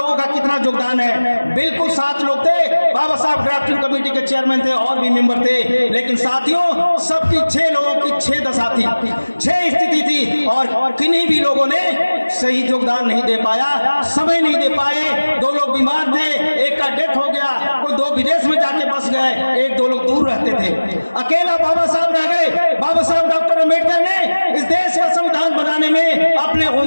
का कितना योगदान है। बिल्कुल 7 लोग थे, बाबा साहब ड्राफ्टिंग कमेटी के चेयरमैन थे, और भी मेंबर थे, लेकिन साथियों सबकी 6 लोगों की 6 दशा थी, 6 स्थिति थी, और किन्हीं भी लोगों ने सही योगदान नहीं दे पाया, समय नहीं दे पाए। 2 लोग बीमार थे, एक का डेथ हो गया, कोई 2 विदेश में जाके बस गए, 1-2 लोग दूर रहते थे, अकेला बाबा साहब रह गए। बाबा साहब डॉक्टर अम्बेडकर ने इस देश का संविधान बनाने में अपने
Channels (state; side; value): inverted; both; correlation -1.00